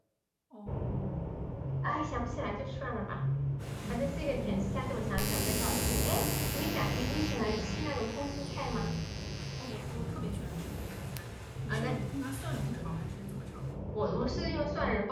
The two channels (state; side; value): identical; both; correlation 1.00